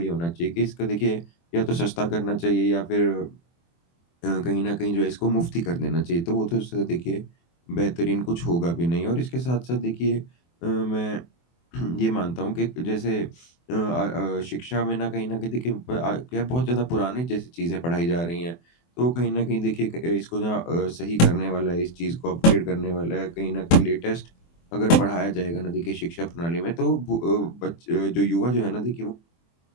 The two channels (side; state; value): right; late; 24 ms